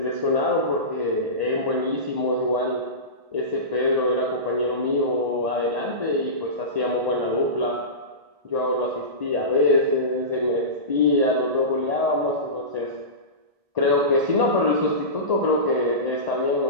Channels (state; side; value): late; left; 1.6 ms